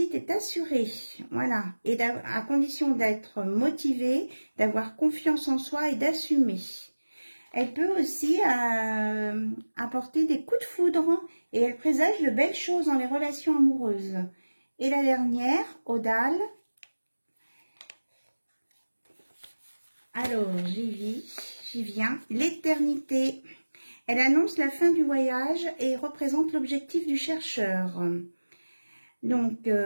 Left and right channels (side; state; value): both; inverted; correlation -1.00